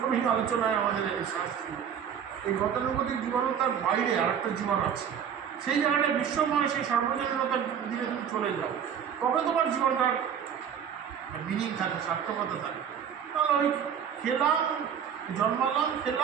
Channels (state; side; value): quieter; left; 8.2 dB